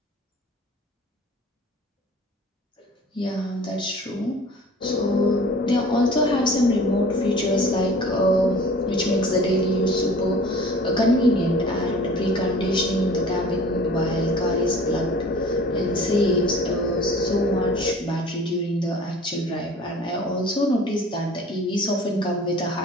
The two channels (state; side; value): normal; both; correlation 0.46